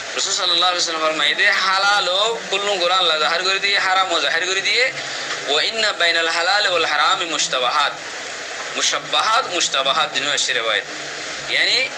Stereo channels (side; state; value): both; identical; correlation 1.00